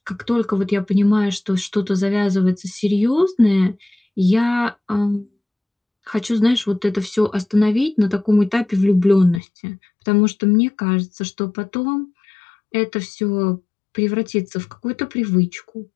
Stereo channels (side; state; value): right; drops out; at 9.4 s